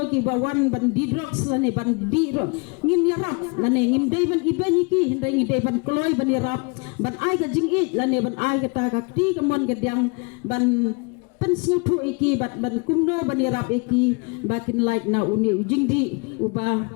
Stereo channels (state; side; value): quieter; right; 32.1 dB